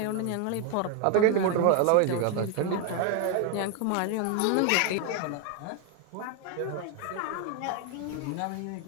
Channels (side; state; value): both; different; correlation 0.01